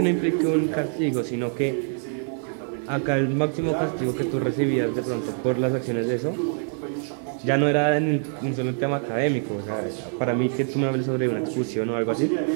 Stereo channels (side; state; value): left; silent; 56 dB below the other